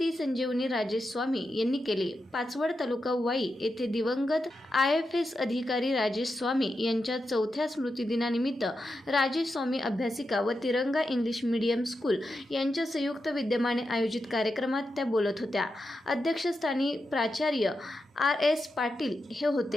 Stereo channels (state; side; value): normal; both; correlation 0.88